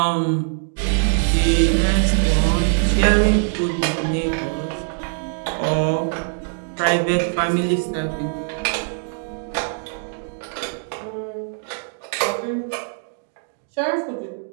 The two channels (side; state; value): left; silent; digital silence